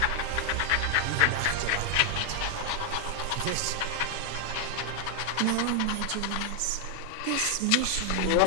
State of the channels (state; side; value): different; both; correlation 0.00